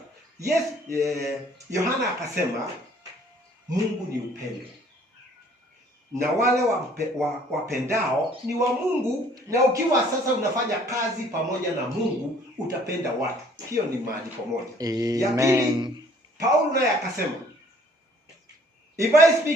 Yes, Yohana akasema Mungu ni upendo, na wale wapendao ni wa Mungu, na ukiwa sasa unafanya kazi pamoja na Mungu utapenda watu. Hiyo ni maandiko moja. Ya pili, Paulo naye akasema, if I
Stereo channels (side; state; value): both; normal; correlation 0.58